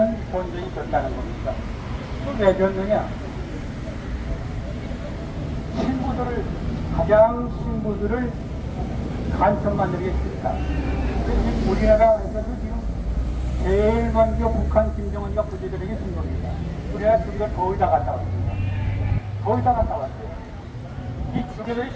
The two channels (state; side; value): identical; both; correlation 1.00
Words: 전쟁이 됐다는 겁니다. 왜 졌느냐? 신부들을 간첩 만들기 싫다. 우리나라에서도 지금 제일 먼저 북한 김정은이가 부지들에게 준 겁니다. 우리나라 둘이가 거의 다 갔다 왔습니다. 거의 다 갔다 왔어요. 이 주교들이